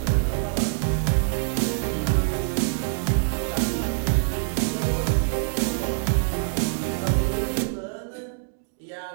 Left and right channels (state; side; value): silent; left; digital silence